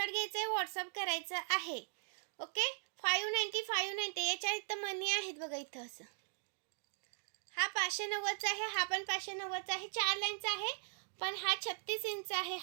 घ्यायचा आहे, व्हॉट्सअप करायचं आहे. ओके. 590 याच्या इथं मनी आहेत बघा इथं असं. हा 590चा आहे, हा पण 590चा आहे. 4 लाईनचा आहे पण हा 36 इंच आहे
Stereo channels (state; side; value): silent; left; digital silence